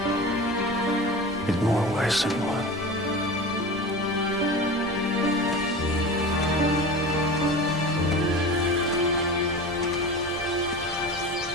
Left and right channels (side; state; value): both; normal; correlation 0.32